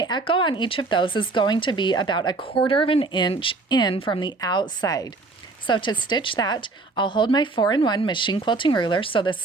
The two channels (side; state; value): left; quieter; 3.5 dB